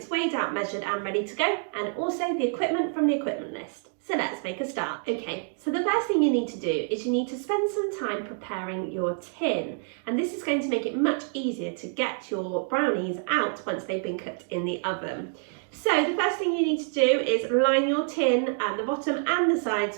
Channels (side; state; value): left; silent; 55 dB below the other